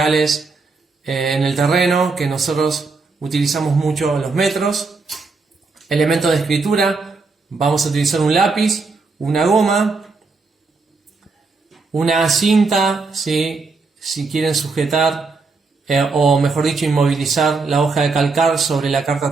en el terreno, que nosotros utilizamos mucho los metros. Elementos de escritura: vamos a utilizar un lápiz, una goma, una cinta, ¿sí?, si quieren sujetar o mejor dicho inmovilizar la hoja de calcar sobre la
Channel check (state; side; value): quieter; left; 4.1 dB